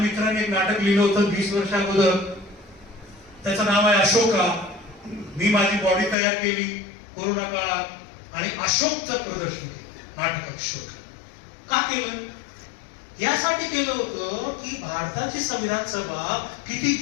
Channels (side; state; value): right; drops out; at 6.2 s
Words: एक नाटक लिहिलं होतं 20 वर्ष अगोदर, त्याचं नाव आहे अशोका. मी माझी बॉडी तयार केली कोरोना काळात आणि अशोकचं प्रदर्शन केलं नाटक अशोक. का केलं, यासाठी केलं होतं की भारताची संविधान सभा किती